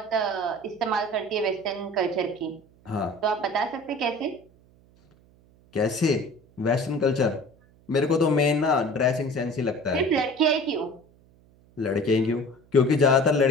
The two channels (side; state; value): right; noise; hum, 30 dB below the sound